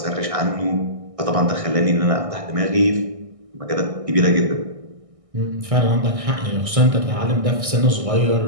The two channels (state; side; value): late; left; 1.6 ms